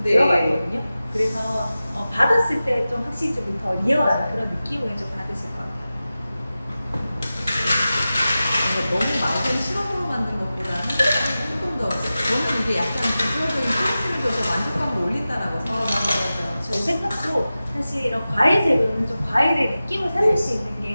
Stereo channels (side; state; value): both; inverted; correlation -0.95